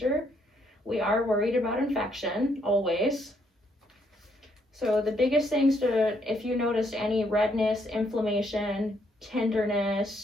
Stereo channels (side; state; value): both; normal; correlation 0.72